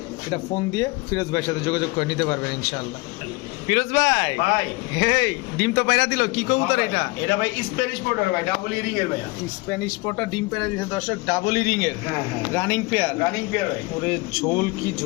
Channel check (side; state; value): right; quieter; 24.3 dB